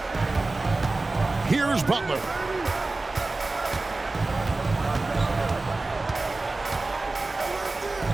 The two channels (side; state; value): left; quieter; 3.3 dB